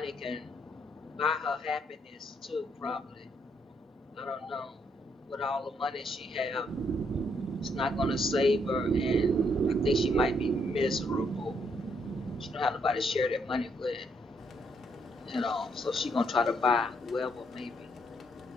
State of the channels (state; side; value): normal; both; correlation 0.73